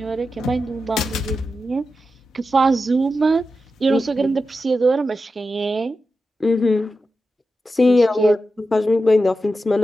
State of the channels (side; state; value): both; normal; correlation 0.90